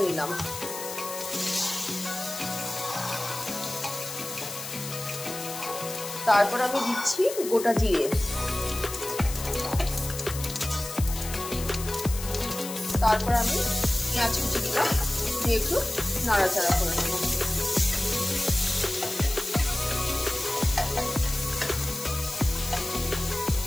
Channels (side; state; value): left; noise; hiss, 9 dB below the sound